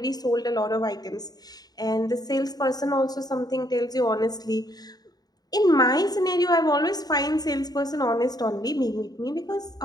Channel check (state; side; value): late; right; 0.19 ms